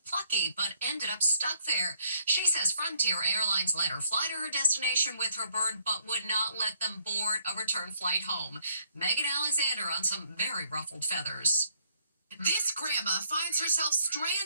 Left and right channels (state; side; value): inverted; both; correlation -0.68